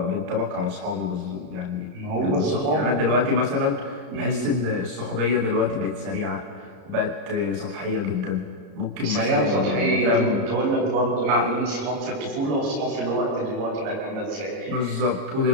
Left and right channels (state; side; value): late; left; 33 ms